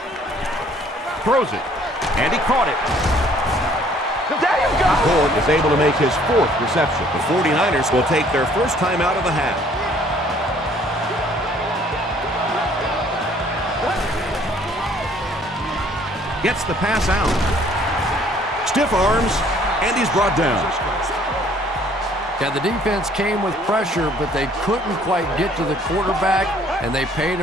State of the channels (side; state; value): both; normal; correlation 0.59